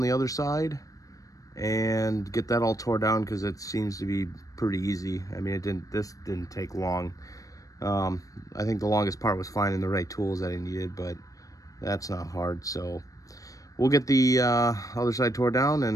the other side and get that all tore down, because it seems to be pretty easy. I mean, this didn't take long. I think the longest part was finding the right tools that I needed, but that's not hard. So we'll get the other side tore down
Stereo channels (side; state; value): right; late; 0.16 ms